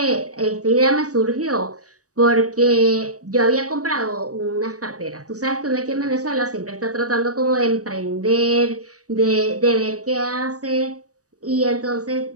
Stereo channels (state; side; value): late; left; 0.66 ms